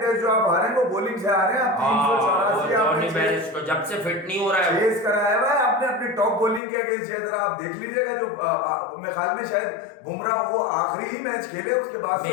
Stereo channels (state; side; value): drops out; right; at 6.6 s